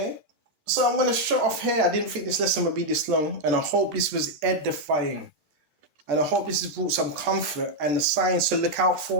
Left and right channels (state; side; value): late; left; 14 ms